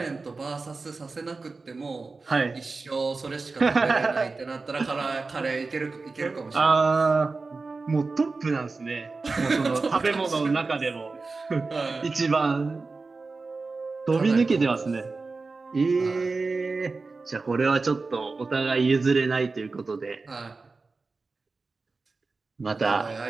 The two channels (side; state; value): left; quieter; 3.9 dB